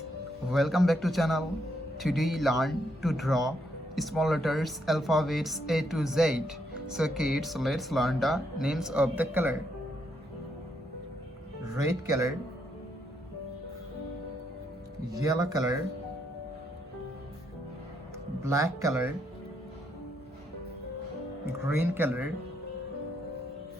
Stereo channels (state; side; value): normal; both; correlation 0.76